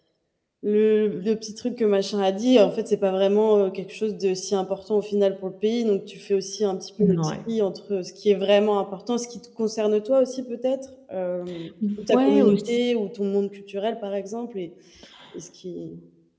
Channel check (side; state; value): both; identical; correlation 1.00